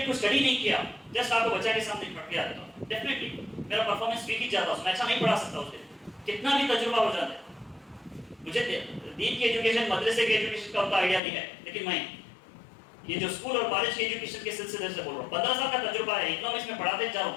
को स्टडी नहीं किया, जस्ट आपको बच्चा के सामने पढ़ के आता हूं, डेफिनेटली मेरा परफॉर्मेंस वीक ही जाता, मैं अच्छा नहीं पढ़ा सकता उसके, कितना भी तजुर्बा हो जाता है। मुझे दीन की एजुकेशन, मदरसे की एजुकेशन का उतना आइडिया नहीं है, लेकिन मैं ये जो स्कूल और कॉलेज की एजुकेशन के सिलसिले से बोल रहा हूँ, 15 साल का तजुर्बा है, इकोनॉमिक्स में पढ़ाते जा रहा हूँ,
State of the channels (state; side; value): drops out; right; at 11.2 s